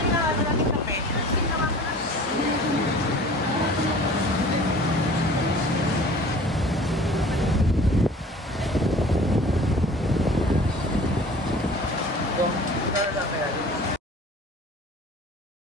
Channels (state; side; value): normal; both; correlation 0.45